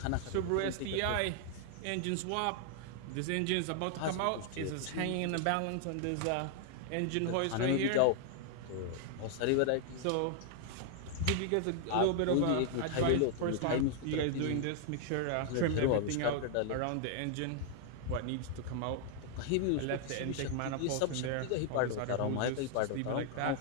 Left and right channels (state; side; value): different; both; correlation 0.00